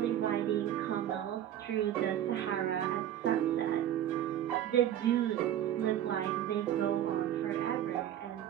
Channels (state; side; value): quieter; left; 11.2 dB